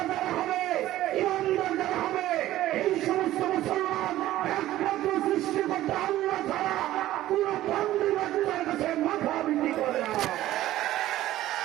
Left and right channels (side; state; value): left; quieter; 14.6 dB